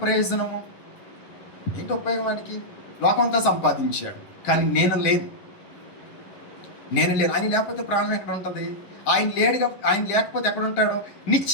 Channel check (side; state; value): right; late; 11 ms